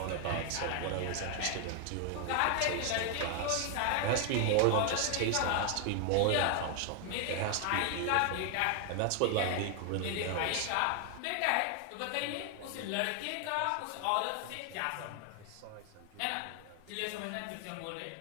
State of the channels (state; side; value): different; both; correlation 0.00